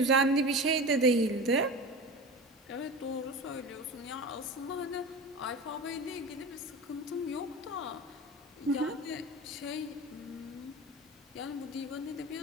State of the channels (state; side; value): normal; both; correlation 0.31